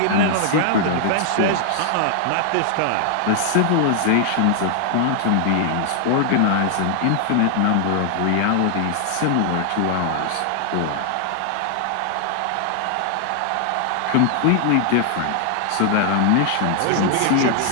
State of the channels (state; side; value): different; both; correlation 0.00